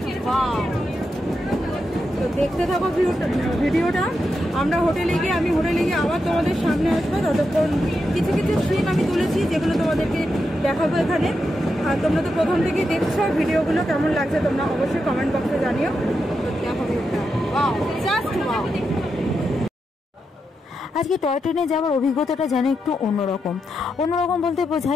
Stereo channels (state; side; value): normal; both; correlation 0.86